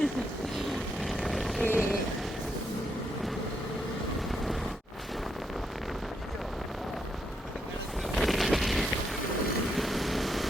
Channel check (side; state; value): both; normal; correlation 0.79